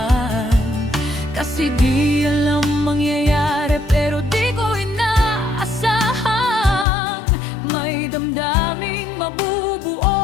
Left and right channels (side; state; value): right; drops out; at 6.9 s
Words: kasi di alam mangyayari, pero di ko inaasahang may damdaming